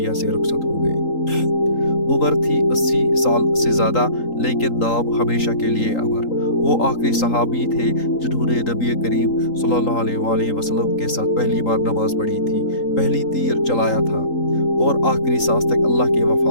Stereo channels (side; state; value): right; late; 3.8 ms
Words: से रुखसत हो गए। उम्र थी 80 साल से ज़्यादा, लेकिन नाम हमेशा के लिए अमर। वो आखिरी सहाबी थे जिन्होंने नबी करीम सल्लल्लाहु अलैहि वसल्लम के साथ पहली बार नमाज पढ़ी थी, पहली तीर चलाया था और आखिरी सांस तक अल्लाह के